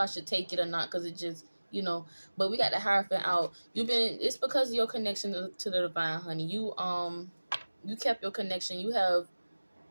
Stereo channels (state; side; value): inverted; both; correlation -1.00